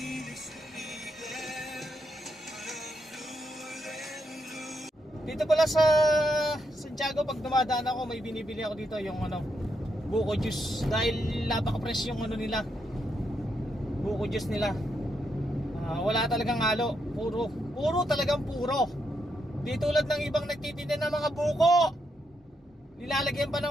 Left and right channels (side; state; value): both; normal; correlation 0.80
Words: Dito pala sa Santiago, pag dumadaan ako, may binibili ako dito yung buko juice. Dahil napaka-fresh yung nila, buko juice nila. Wala talagang halo, puro talagang puro. Di tulad ng ibang nagtitinda ng mga buko, nilalagyan pa